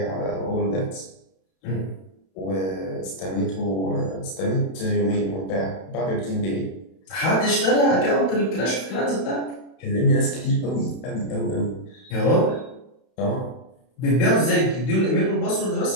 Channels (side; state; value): right; late; 31 ms